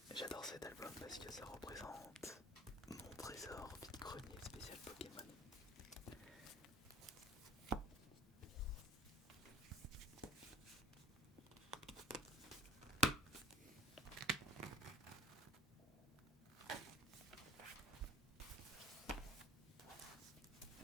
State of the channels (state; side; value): normal; both; correlation 0.43